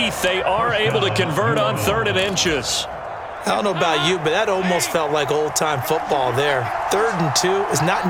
they are able to convert on 3rd and inches. I don't know about you, but that almost felt like old-time football there. 3rd and 2 is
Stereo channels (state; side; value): identical; both; correlation 1.00